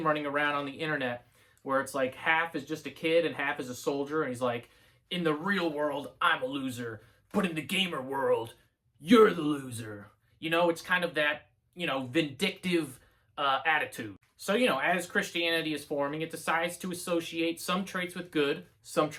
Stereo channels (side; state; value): both; identical; correlation 1.00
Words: running around on the internet where it's like half is just a kid and half is a soldier, and he's like, in the real world, I'm a loser, but in the gamer world, you're the loser. You know, it's kind of that, you know, vindictive attitude. So, you know, as Christianity is forming, it decides to associate some traits with good, some